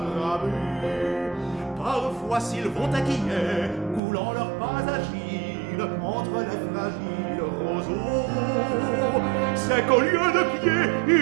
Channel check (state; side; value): drops out; left; at 4.0 s